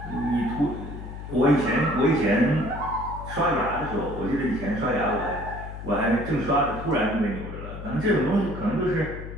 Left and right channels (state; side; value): noise; left; hum, 10 dB below the sound